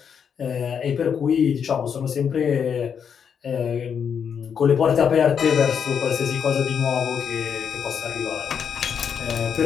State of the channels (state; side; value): quieter; right; 7.3 dB